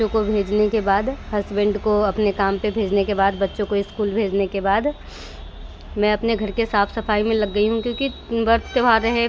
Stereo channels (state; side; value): identical; both; correlation 1.00